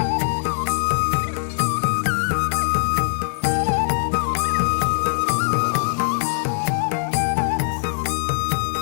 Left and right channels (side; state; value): right; silent; 65 dB below the other